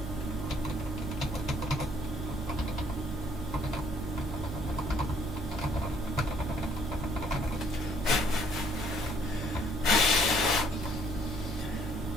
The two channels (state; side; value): normal; both; correlation 0.64